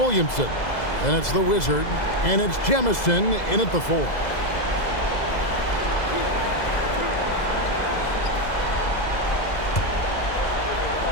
and it's the Wizard, and it's Jemison in at the 4.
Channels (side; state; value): right; late; 2.0 ms